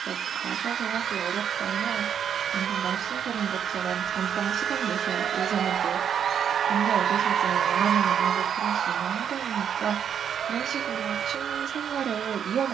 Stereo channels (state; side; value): quieter; left; 8.2 dB